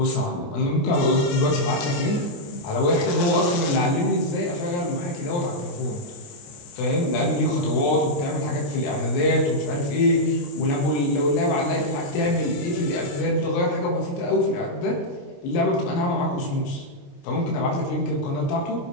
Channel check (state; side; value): late; right; 29 ms